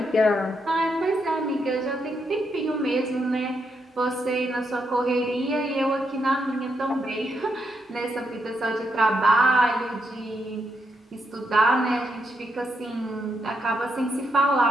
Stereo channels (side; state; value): both; normal; correlation 0.80